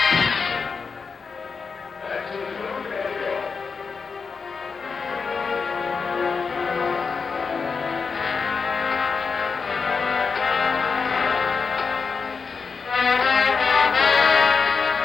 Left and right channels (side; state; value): right; quieter; 5.2 dB